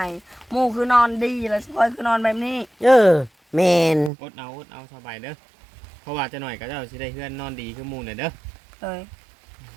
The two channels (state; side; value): drops out; left; at 4.1 s